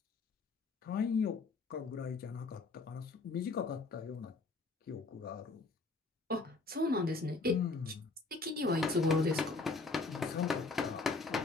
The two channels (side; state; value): right; quieter; 3.9 dB